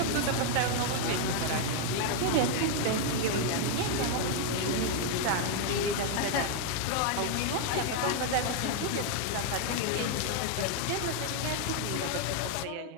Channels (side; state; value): both; different; correlation 0.00